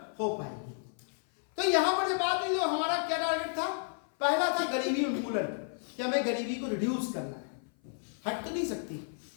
हो पाएगी। तो यहां पर जो बात हुई, तो हमारा क्या टारगेट था? पहला था गरीबी उन्मूलन, कि हमें गरीबी को रिड्यूस करना है, हट तो नहीं सकती।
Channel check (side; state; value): right; silent; 55 dB below the other